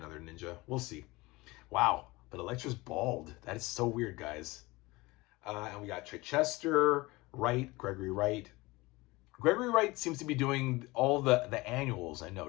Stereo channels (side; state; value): right; quieter; 22.0 dB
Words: ninja. We'll see. Wow, but Elektra's bald. That is so weird, guys. And we got Chichester, Wright, Gregory Wright. Gregory Wright seems to be doing all the annuals, I